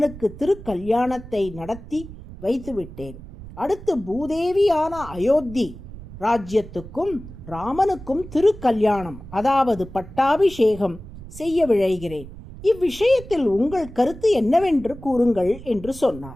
திருக்கல்யாணத்தை நடத்தி வைத்துவிட்டேன். அடுத்து பூதேவியான அயோத்தி ராஜ்யத்துக்கும் ராமனுக்கும் திருக்கல்யாணம், அதாவது பட்டாபிஷேகம் செய்ய விழைகிறேன். இவ்விஷயத்தில் உங்கள் கருத்து என்னவென்று கூறுங்கள் என்று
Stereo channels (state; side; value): noise; right; rumble, 15 dB below the sound